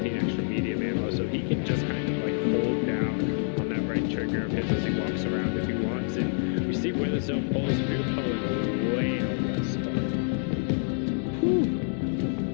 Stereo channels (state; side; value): silent; right; 60 dB below the other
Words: extra medium ammo, so he can just kind of like hold down on that right trigger of his as he walks around if he wants. And we see where the zone pulls. We're pulling way out west. Whew.